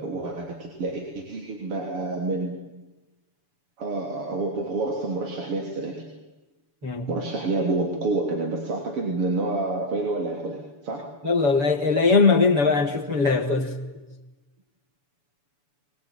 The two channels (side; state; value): left; late; 7.0 ms